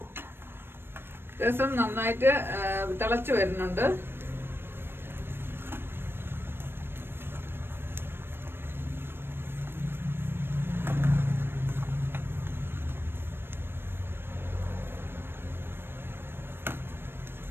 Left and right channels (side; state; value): left; late; 0.11 ms